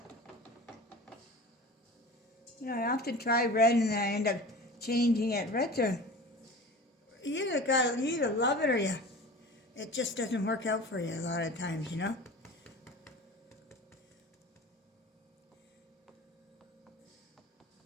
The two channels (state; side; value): normal; both; correlation 0.37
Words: You know, I often try red and then I end up changing it. Reds are, you either love it or it just doesn't work out for you a lot of times, you know?